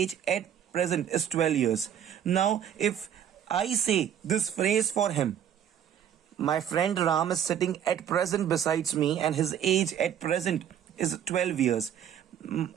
at present is 12 years. Now, if I say this phrase for him, my friend Ram is sitting at present besides me and his age at present is 12 years.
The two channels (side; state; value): left; quieter; 9.5 dB